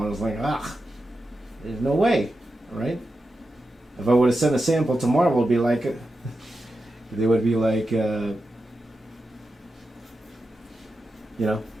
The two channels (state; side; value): normal; both; correlation 0.90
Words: I was like, there's no way, right? If I would have sent a sample to Marvel, it'd be like, they would be like,